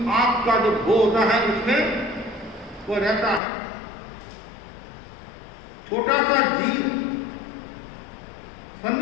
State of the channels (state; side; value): drops out; right; at 3.4 s